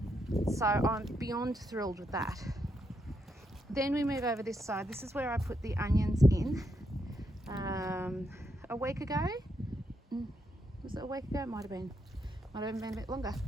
So I'm beyond thrilled with that. Then we move over this side. This is where I put the onions in a week ago. Was it a week ago? It might have been a bit longer.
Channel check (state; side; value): normal; both; correlation 0.80